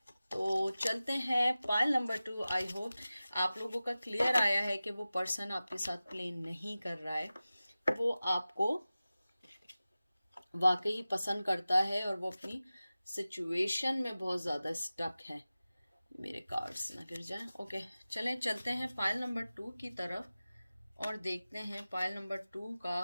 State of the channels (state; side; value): inverted; both; correlation -0.96